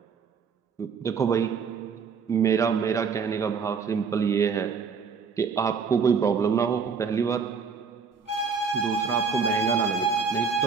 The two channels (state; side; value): quieter; left; 5.8 dB